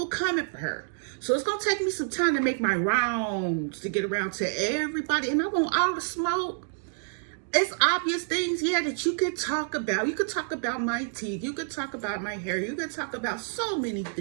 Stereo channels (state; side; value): silent; left; digital silence